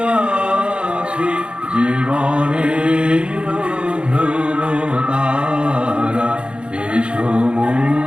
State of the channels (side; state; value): left; late; 0.056 ms